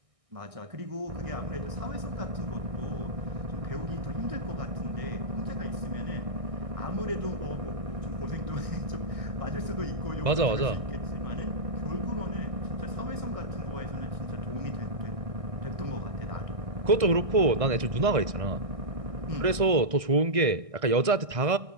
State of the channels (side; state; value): left; late; 1.6 ms